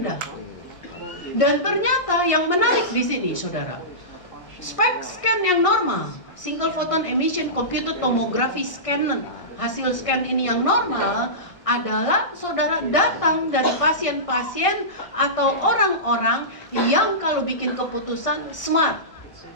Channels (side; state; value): right; late; 1.6 ms